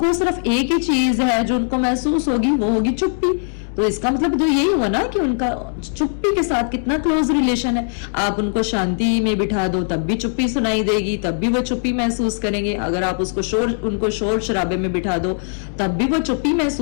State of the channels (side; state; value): right; silent; digital silence